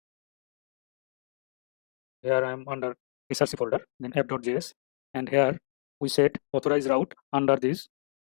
Here I am under src folder, then app.js, and here we set authorized route under these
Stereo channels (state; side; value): silent; right; digital silence